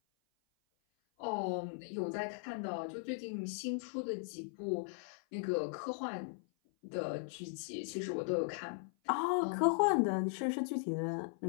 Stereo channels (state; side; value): silent; right; 52 dB below the other